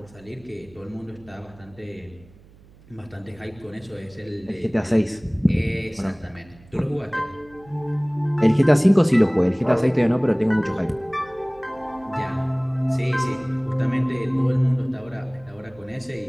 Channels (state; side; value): noise; right; hum, 25 dB below the sound